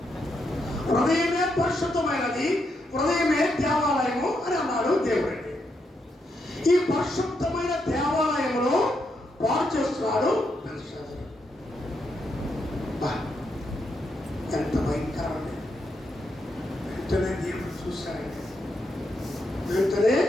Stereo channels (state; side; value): normal; both; correlation 0.81